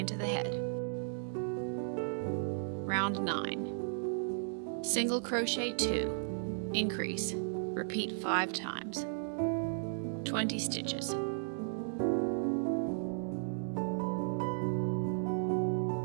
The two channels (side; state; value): left; silent; digital silence